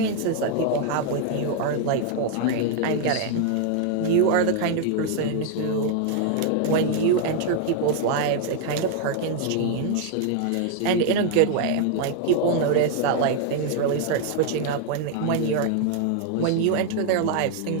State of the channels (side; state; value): both; different; correlation 0.00